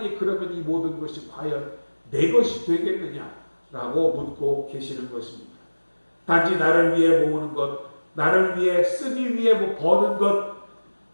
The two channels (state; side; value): inverted; both; correlation -1.00